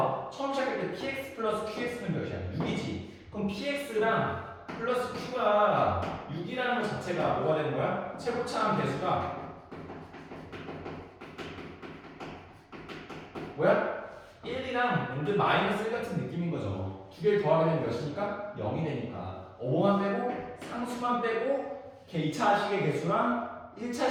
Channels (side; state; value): both; identical; correlation 1.00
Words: 처음 시작할 때 px 플러스 qx는 몇이야? 6이지. 그럼 px랑 플러스 q가 6이라는 것 자체가 뭐가 되는 거야? 최고차항 개수가 뭐야? 1이랑 근데 마이너스 1 같은 느낌인 거죠. 두 개를 더하게 되면 몇이니까? 0이 되니까. 5만 빼고 상수만 빼고 2차식의 개수랑